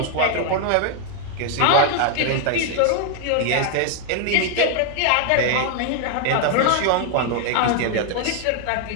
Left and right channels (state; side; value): different; both; correlation 0.00